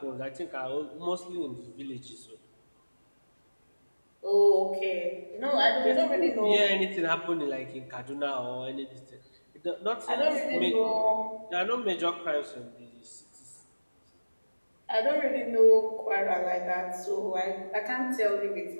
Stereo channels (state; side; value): inverted; both; correlation -1.00